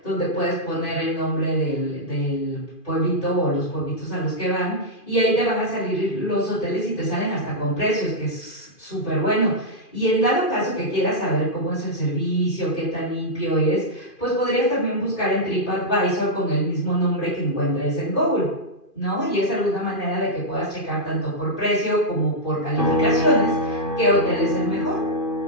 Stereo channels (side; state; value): right; late; 2.5 ms